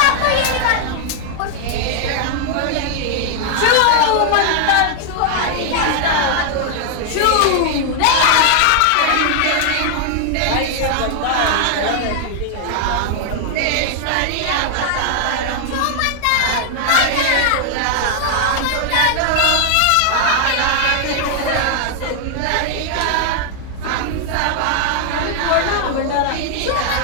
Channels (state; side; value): different; both; correlation 0.00